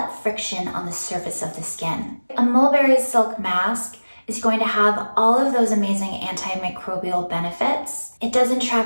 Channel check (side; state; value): both; inverted; correlation -1.00